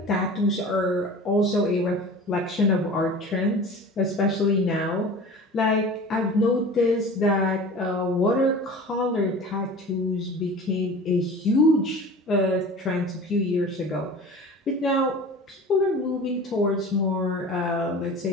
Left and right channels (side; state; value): both; normal; correlation 0.38